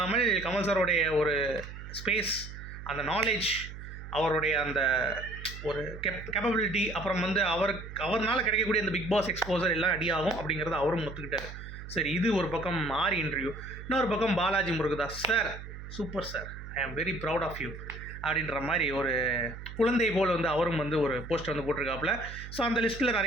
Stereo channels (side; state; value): right; noise; hum, 11 dB below the sound